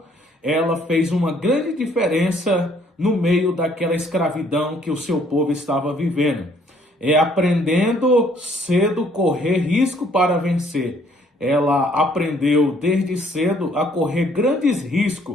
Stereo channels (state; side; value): normal; both; correlation 0.63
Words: ela fez uma grande diferença no meio daquela escravidão que o seu povo estava vivendo. Aprendendo cedo correr risco para vencer. Ela aprendeu desde cedo a correr grandes